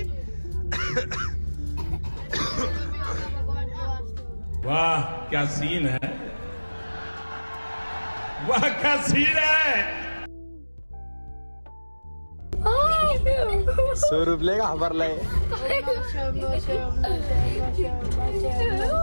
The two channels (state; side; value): inverted; both; correlation -1.00